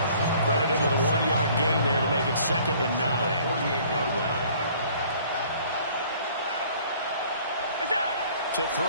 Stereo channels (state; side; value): inverted; both; correlation -0.55